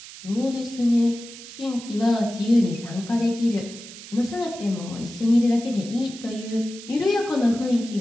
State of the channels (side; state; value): right; noise; hiss, 15 dB below the sound